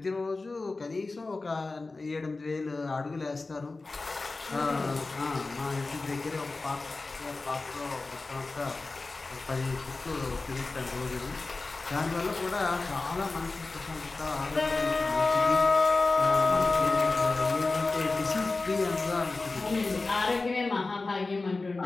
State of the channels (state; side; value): quieter; right; 3.5 dB